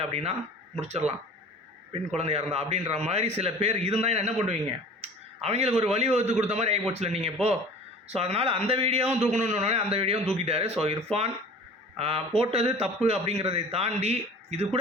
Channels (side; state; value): both; normal; correlation 0.43